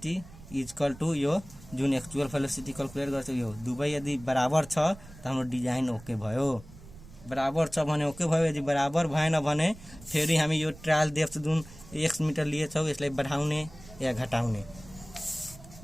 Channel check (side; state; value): right; noise; rumble, 19 dB below the sound